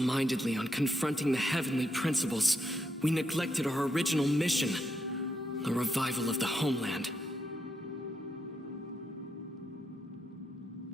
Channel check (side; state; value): both; normal; correlation 0.80